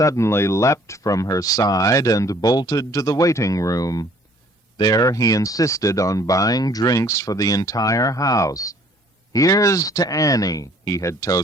leapt from her side and bolted to the waiting room. There he insisted on buying drinks for the entire house. "Here's to Annie," he had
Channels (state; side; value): normal; both; correlation 0.57